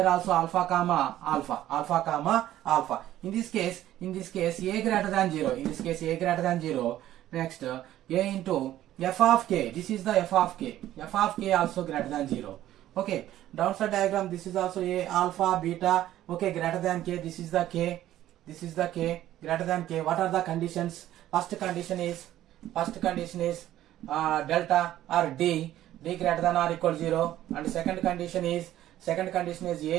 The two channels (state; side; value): quieter; left; 13.2 dB